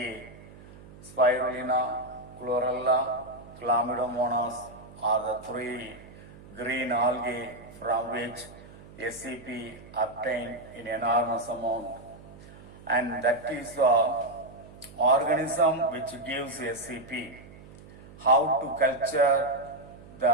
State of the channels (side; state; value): right; noise; hum, 19 dB below the sound